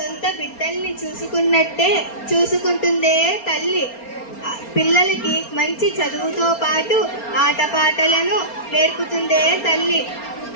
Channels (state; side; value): late; right; 4.3 ms